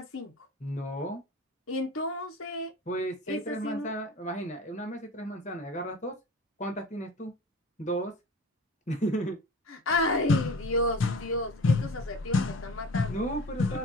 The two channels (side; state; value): both; normal; correlation 0.38